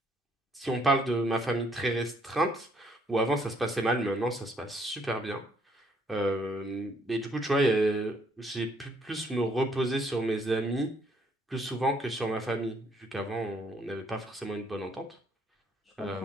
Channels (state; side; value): normal; both; correlation 0.67